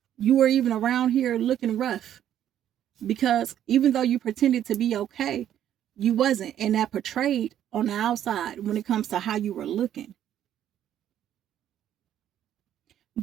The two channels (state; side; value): quieter; left; 10.8 dB